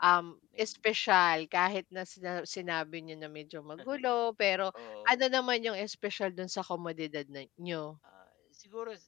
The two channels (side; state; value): right; quieter; 17.0 dB